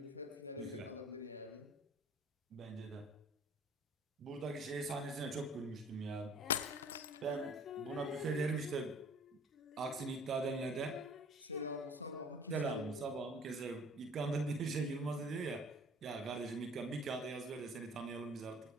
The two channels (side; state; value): both; normal; correlation 0.50